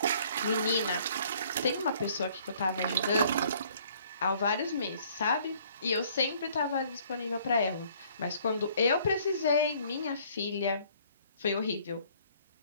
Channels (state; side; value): inverted; both; correlation -0.59